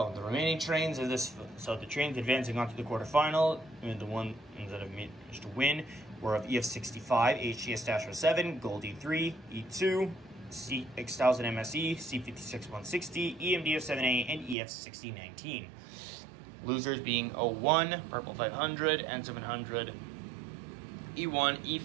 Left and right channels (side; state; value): left; drops out; at 14.6 s